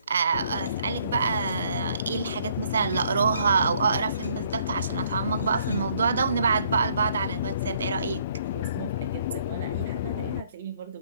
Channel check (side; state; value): both; inverted; correlation -0.65